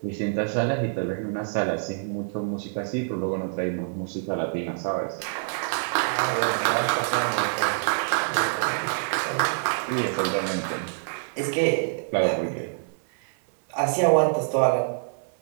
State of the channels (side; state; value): left; silent; 55 dB below the other